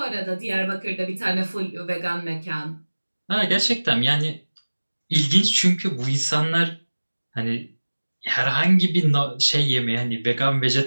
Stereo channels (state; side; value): inverted; both; correlation -1.00